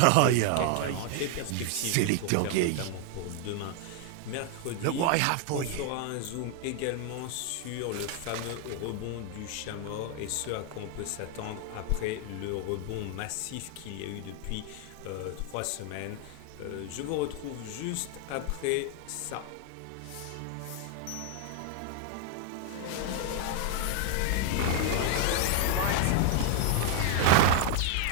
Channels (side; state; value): both; different; correlation 0.00